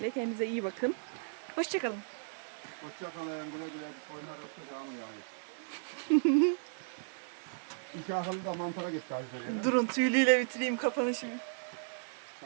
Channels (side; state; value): left; silent; digital silence